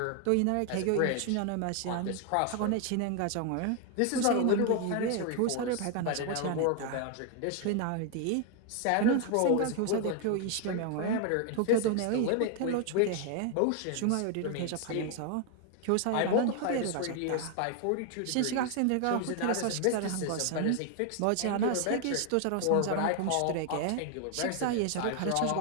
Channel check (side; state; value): both; different; correlation 0.00